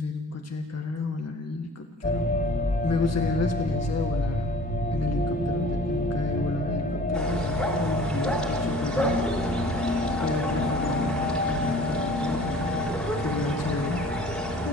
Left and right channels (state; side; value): normal; both; correlation 0.48